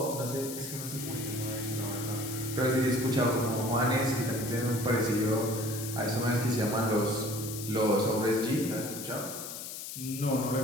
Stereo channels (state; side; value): noise; left; hiss, 8 dB below the sound